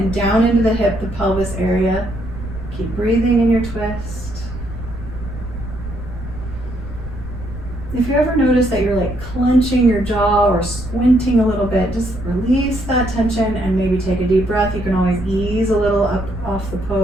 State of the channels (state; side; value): noise; right; rumble, 11 dB below the sound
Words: down into the hip, the pelvis area. Keep breathing in your twist. If you ever notice that you're like clenching your jaw or squinting a little bit, just release that tension and maybe take a deep breath. You can always ease a little up off the